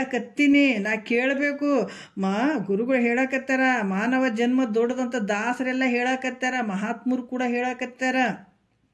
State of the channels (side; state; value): both; identical; correlation 1.00